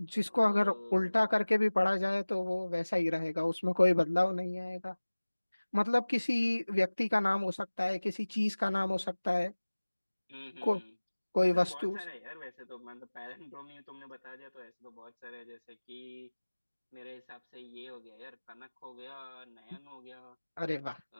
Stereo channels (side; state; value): both; inverted; correlation -1.00